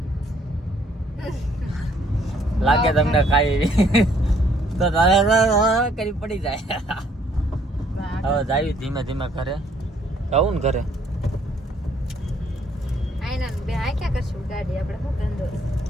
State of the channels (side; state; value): both; normal; correlation 0.65